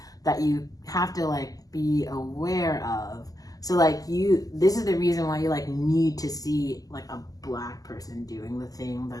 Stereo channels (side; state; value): right; late; 0.17 ms